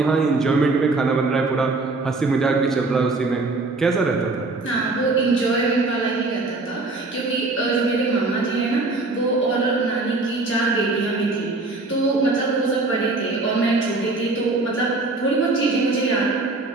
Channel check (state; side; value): quieter; left; 3.4 dB